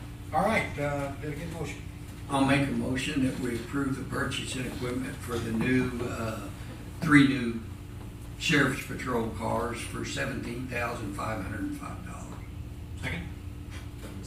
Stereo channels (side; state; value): both; identical; correlation 1.00